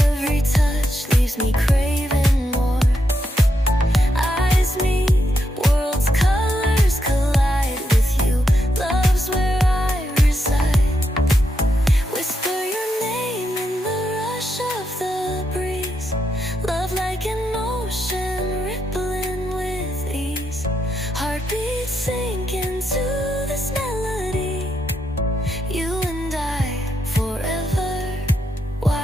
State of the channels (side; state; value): both; normal; correlation 0.82